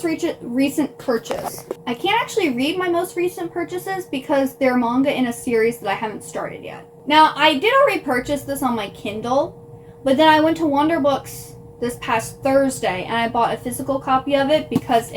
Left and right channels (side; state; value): both; identical; correlation 1.00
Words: recent purchase. I can't actually read my most recent purchases because they're manga in a series that I haven't started yet. Now, I did already purchase this on my Kindle, but then I went to Wonder Books this past Thursday and I bought a physical copy of it because